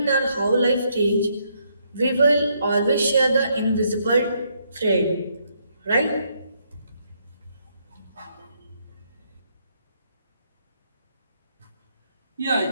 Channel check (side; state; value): both; inverted; correlation -0.73